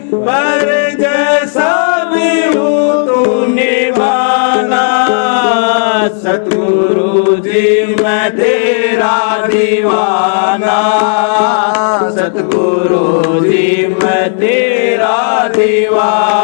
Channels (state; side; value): silent; right; digital silence